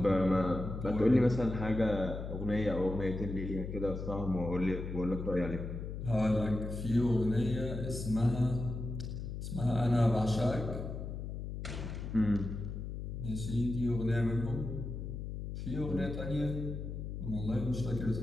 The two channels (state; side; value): noise; left; hum, 6 dB below the sound